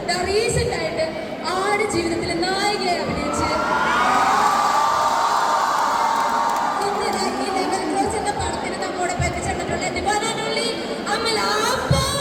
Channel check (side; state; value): both; identical; correlation 1.00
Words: റീസെന്റ് ആയിട്ട് ആട് ജീവിതത്തിലെ നായികയെ അഭിനയിച്ച് ഈ ലെവൽ ക്രോസ് എന്ന പടത്തിന് നമ്മോടൊപ്പം എത്തിച്ചേർന്നിട്ടുള്ള എന്റെ വനാനുള്ളി Amala.